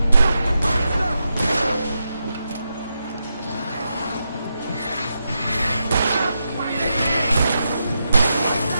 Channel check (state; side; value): inverted; both; correlation -0.87